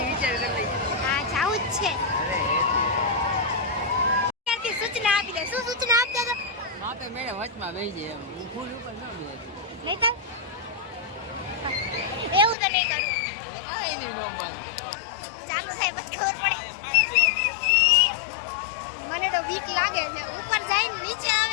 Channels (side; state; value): right; drops out; at 12.6 s